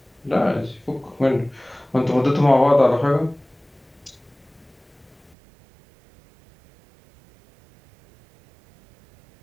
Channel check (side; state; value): left; drops out; at 5.4 s